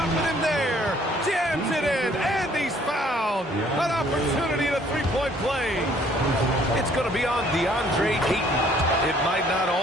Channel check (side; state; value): both; normal; correlation 0.60